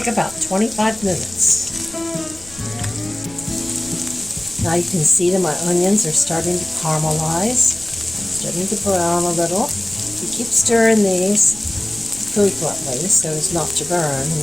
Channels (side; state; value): left; noise; rumble, 21 dB below the sound